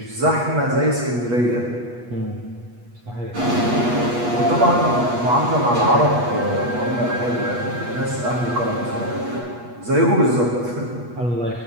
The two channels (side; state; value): left; late; 8.3 ms